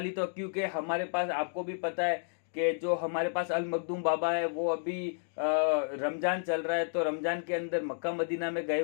तो, क्योंकि हमारे पास आपको भी पता है कि जो हमारे पास अल मखदूम बाबा है वो अभी रमजान चल रहा है, तो रमजान के अंदर मक्का मदीना में गए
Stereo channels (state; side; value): silent; right; digital silence